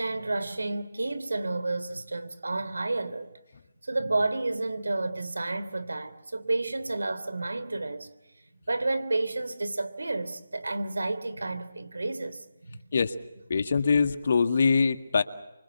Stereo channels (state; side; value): inverted; both; correlation -0.91